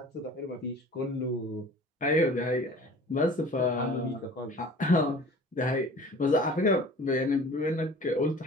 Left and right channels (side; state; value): both; normal; correlation 0.44